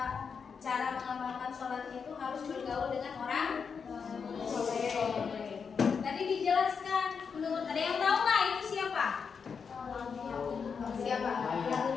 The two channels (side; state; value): right; quieter; 6.0 dB